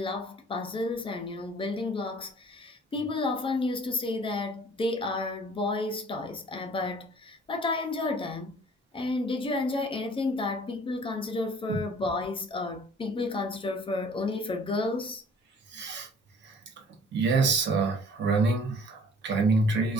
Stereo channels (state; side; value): normal; both; correlation 0.52